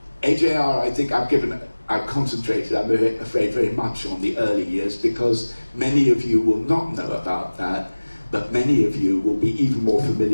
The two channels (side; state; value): both; inverted; correlation -1.00